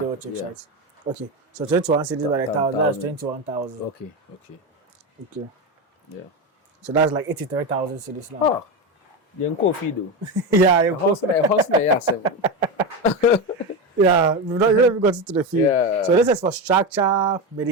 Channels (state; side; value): normal; both; correlation 0.16